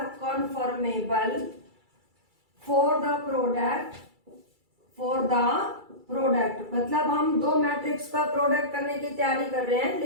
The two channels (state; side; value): late; left; 2.3 ms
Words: conformable for the product, मतलब हम दो मैट्रिक्स का प्रोडक्ट करने की तैयारी कर रहे हैं,